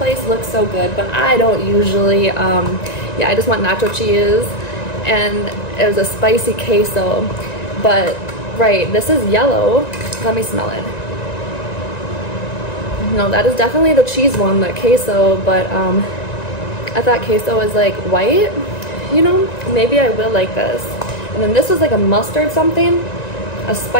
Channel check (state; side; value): late; right; 1.9 ms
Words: looks so good, but I don't usually, yeah, I just want nacho cheese, and it was a spicy queso, but right, this is yellow. Let me smell it. No, that is definitely the cheese one, the queso, but I thought queso was like white, you know, maybe I will like this. And then this was like a mustard something, a